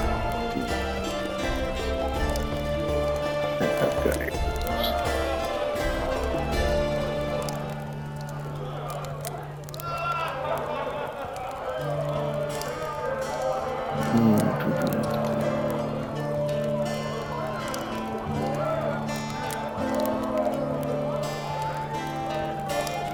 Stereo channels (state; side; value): identical; both; correlation 1.00